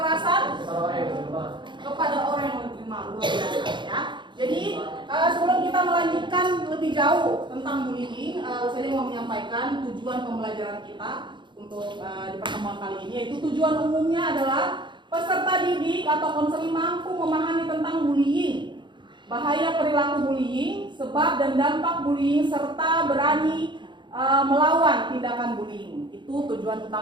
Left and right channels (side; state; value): left; late; 0.23 ms